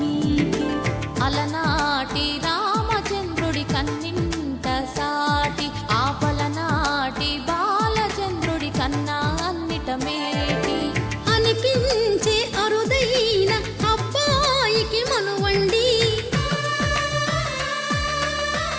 అలనాటి రామచంద్రుడి కన్నింత సాటి ఆపలనాటి బాలచంద్రుడి కన్నా అన్నిట మేటి అనిపించే అరుదైన అబ్బాయికి మనువండి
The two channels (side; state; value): both; identical; correlation 1.00